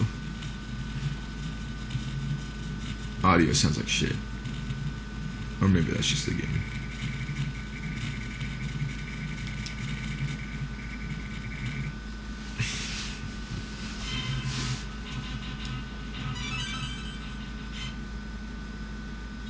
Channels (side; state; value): both; identical; correlation 1.00